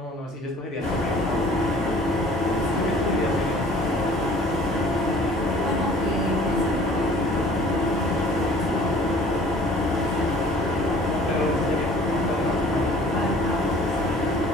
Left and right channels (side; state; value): both; normal; correlation 0.51